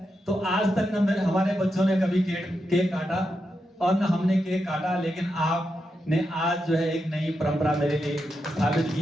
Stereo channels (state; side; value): normal; both; correlation 0.86